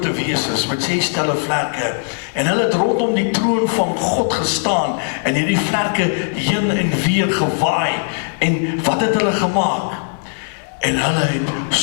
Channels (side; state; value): right; silent; digital silence